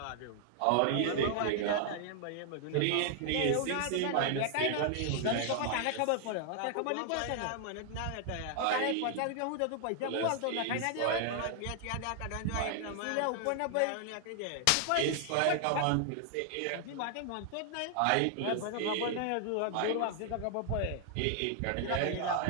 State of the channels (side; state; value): both; different; correlation 0.00